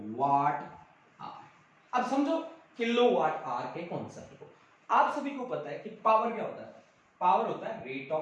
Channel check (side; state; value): both; identical; correlation 1.00